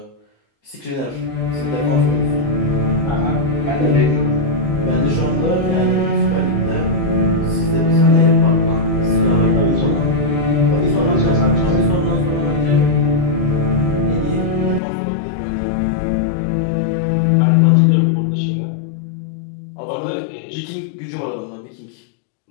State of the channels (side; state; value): right; drops out; at 14.8 s